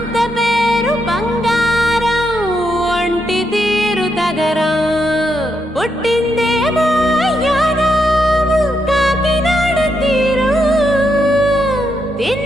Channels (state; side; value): normal; both; correlation 0.81